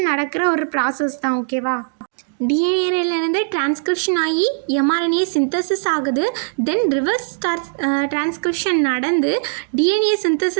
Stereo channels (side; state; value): left; silent; digital silence